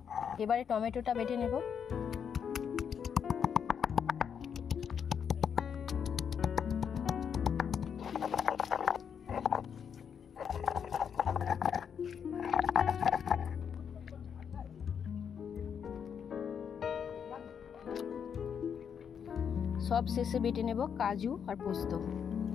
এবারে টমেটোটা বেটে নেব। সব শেষে বেটে নেব কাজু আর পোস্ত।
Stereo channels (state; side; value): quieter; right; 7.5 dB